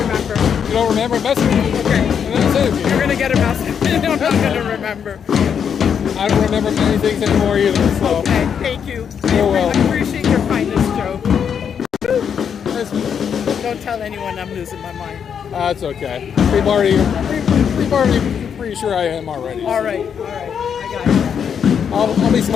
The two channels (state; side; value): quieter; right; 7.6 dB